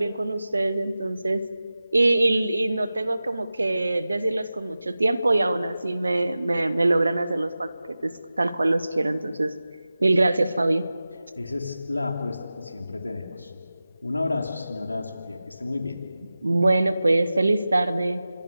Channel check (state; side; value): inverted; both; correlation -0.95